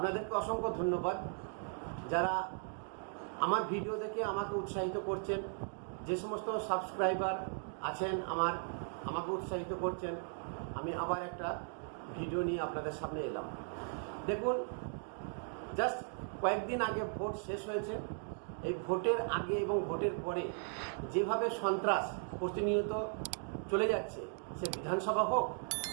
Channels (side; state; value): left; silent; 53 dB below the other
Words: অসংখ্য ধন্যবাদ যারা আমার ভিডিও দেখে আমাকে উৎসাহিত করছেন। যে সমস্ত সাবস্ক্রাইবার আছেন আমাকে উৎসাহিত করছেন। আমি আবার একটা ভিডিও নিয়ে আপনাদের সামনে এলাম। দেখুন, জাস্ট কয়েকদিন আগে ভোট শেষ হয়েছে। এই ভোটের আগে এবং ভোটের পরে যেভাবে সন্ত্রাস প্রতিনিয়ত চলে যাচ্ছে, সে বিধানসভা হোক